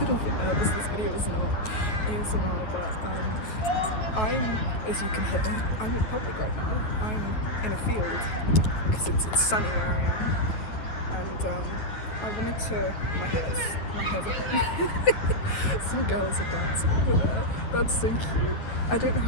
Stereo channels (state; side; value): late; right; 9.2 ms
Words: bit nervous. This video is not ASMR, but I'm, as you can hear, I'm in public right now. I'm in a field because it's sunny where I am, and I wanted to, my hair's on. Some girls are dancing over there. That's so cute. I don't know